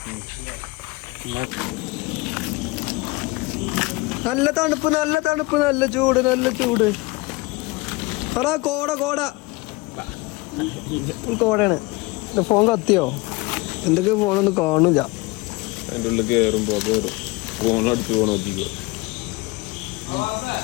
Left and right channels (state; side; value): quieter; right; 23.2 dB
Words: നല്ല തണുപ്പ് നല്ല ചൂട്. പറ കോടയാണ്. ഫോൺ കത്തിയോ? എന്തൊക്കെ ഫോണൊന്നും കാണില്ല. അതിന്റെ ഉള്ളിൽ കയറുമ്പോ ഫോൺ അടിച്ച് പോകണം.